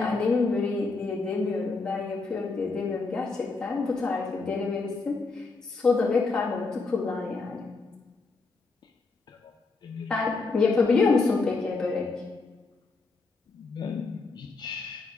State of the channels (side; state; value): right; quieter; 4.0 dB